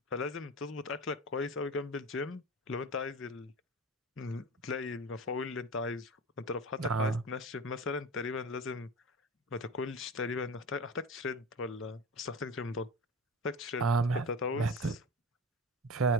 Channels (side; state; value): both; normal; correlation 0.31